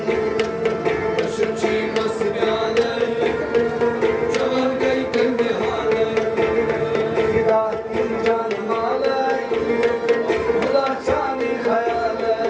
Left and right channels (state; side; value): identical; both; correlation 1.00